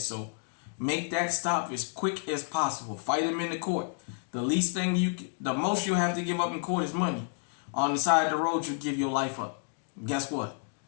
so. Make that stop as quick as possible. Fight him in the court. The most you have to give up in court is money. On the side of the road, you give your life up. Guess what?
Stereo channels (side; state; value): right; silent; 58 dB below the other